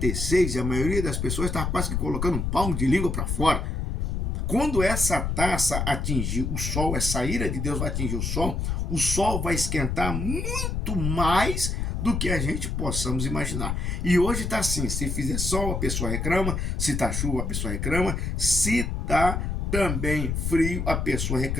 e a maioria das pessoas está quase que colocando um palmo de língua para fora. Quando essa taça atingir o sol, essa ira de Deus vai atingir o sol vai esquentar muito mais do que a gente possamos imaginar. E hoje está assim, se fizer sol a pessoa reclama, se está chuva a pessoa reclama, se está também frio a pessoa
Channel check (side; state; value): left; noise; rumble, 1 dB below the sound